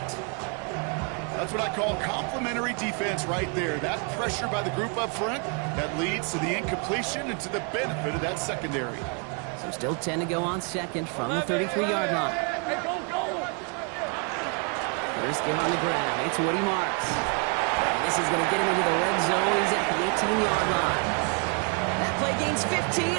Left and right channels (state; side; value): quieter; left; 35.9 dB